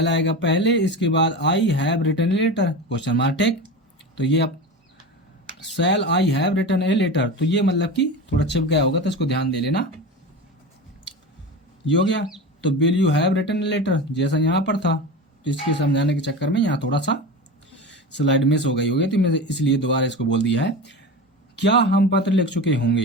आएगा पहले, इसके बाद I have written a letter question mark tick, तो ये अब shall I have written a letter, तो ये मतलब कि थोड़ा छिप गया होगा तो इसको ध्यान दे लेना। ये हो गया। तो will you have written a letter जैसा यहाँ पर था, तो इसके समझाने के चक्कर में यहाँ थोड़ा सा स्लाइड मिस हो गई होगी, तो मैंने इसलिए दोबारा इसको बोल दिया है। क्या हम पत्र लिख चुके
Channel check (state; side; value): normal; both; correlation 0.27